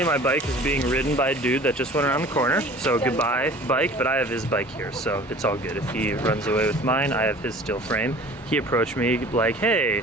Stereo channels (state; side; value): normal; both; correlation 0.45